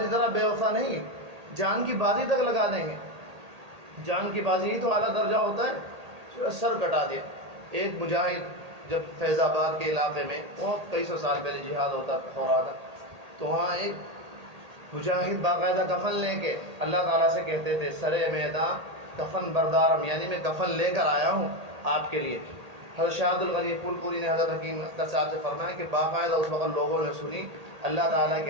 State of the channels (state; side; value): late; left; 1.8 ms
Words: طرح بے وفا نہیں، جان کی بازی تک لگا دیں گے. جان کی بازی ہی تو اعلیٰ درجہ ہوتا ہے. سر کٹا دیا. ایک مجاہد جب فیض آباد کے علاقے میں بہت کئی سو سال پہلے جہاد ہو رہا تھا تو وہاں ایک مجاہد باقاعدہ کفن لے کے اللہ تعالیٰ سے کہتے تھے سرے میدان کفن بردارم، یعنی میں کفن لے کر آیا ہوں آپ کے لیے. حضرت شاہ عبد الغنی پھول پوری نے حضرت حکیم اختر صاحب سے فرمایا کہ باقاعدہ اس وقت لوگوں نے سنی اللہ تعالیٰ